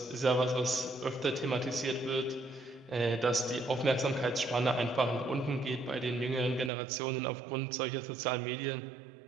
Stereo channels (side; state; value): left; drops out; at 6.7 s